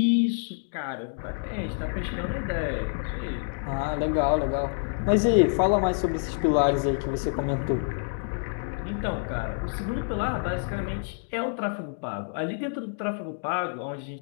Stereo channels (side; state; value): right; silent; digital silence